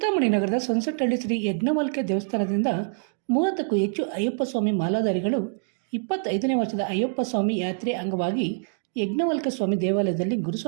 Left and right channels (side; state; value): left; silent; digital silence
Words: ನಗರದ ಸನ್ಸೆಟ್ ಶ್ರೀ ಯಜ್ಞಮಾಲ್ಕೆ ದೇವಸ್ಥಾನದಿಂದ 30ಕ್ಕೂ ಹೆಚ್ಚು ಅಯ್ಯಪ್ಪ ಸ್ವಾಮಿ ಮಾಲಾಧಾರಿಗಳು 25ನೇ ವರ್ಷದ ಅಯ್ಯಪ್ಪ ಸ್ವಾಮಿ ಯಾತ್ರೆ ಅಂಗವಾಗಿ ಯಜ್ಞವಲ್ಕ ಸ್ವಾಮಿ ದೇವಾಲಯದಲ್ಲಿ